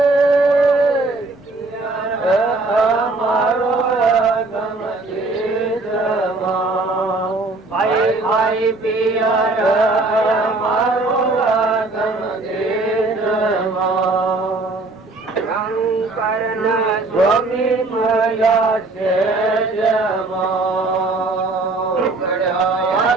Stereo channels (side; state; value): left; quieter; 3.3 dB